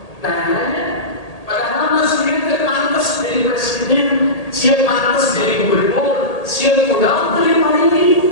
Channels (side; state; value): right; late; 1.8 ms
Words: Nah, padahal masih pantas jadi presiden, siap pantas jadi gubernur, siap pulang terima